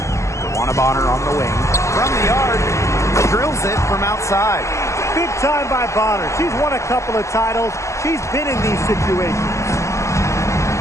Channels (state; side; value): late; right; 0.14 ms